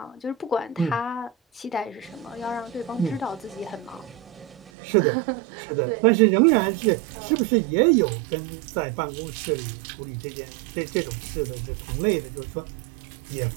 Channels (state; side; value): drops out; left; at 4.7 s